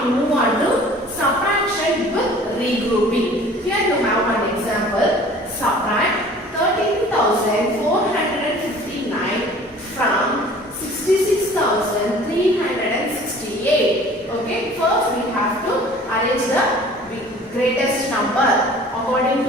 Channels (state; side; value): normal; both; correlation 0.48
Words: move on to subtraction with regrouping. Here you have one example. Subtract 13,459 from 66,368. Okay, first we have to arrange the greatest number according